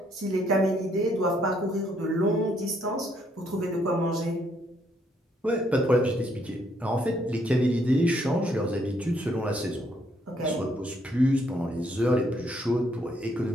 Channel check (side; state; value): both; normal; correlation 0.70